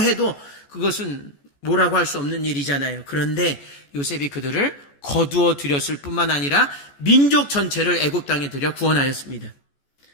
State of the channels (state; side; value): late; right; 14 ms